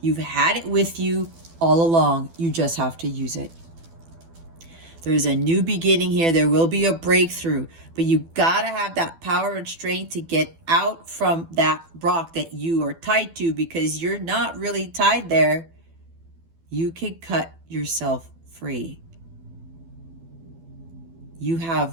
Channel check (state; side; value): late; left; 12 ms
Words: You've had it with you all along. You just have to use it. There's a new beginning here. There will be a breakthrough, but you gotta have that power and strength to get out from that rock that you are tied to, because you're not really tied there. You can cut yourself free. You